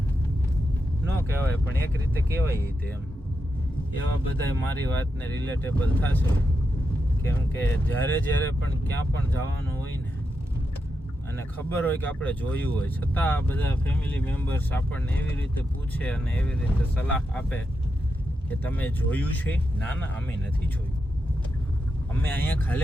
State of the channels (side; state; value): both; normal; correlation 0.86